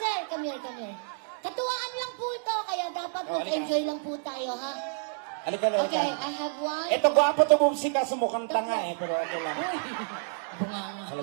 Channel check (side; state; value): left; silent; digital silence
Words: come here. Katuwaan lang po ito, kaya dapat Oh, mag-enjoy lang po tayo, ha? Halika na. Okay, I have one. Ito, gwapo to bumsi ka, sumukhang tanga eh, pero okay lang. Bunganga.